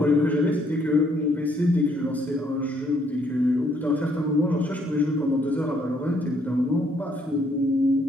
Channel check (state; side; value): normal; both; correlation 0.69